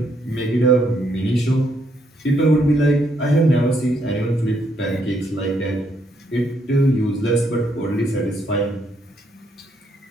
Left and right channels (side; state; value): both; normal; correlation 0.73